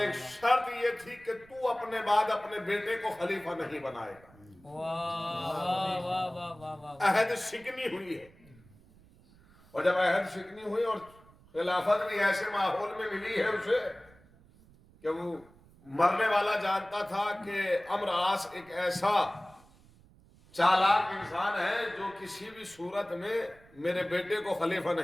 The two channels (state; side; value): noise; right; rumble, 26 dB below the sound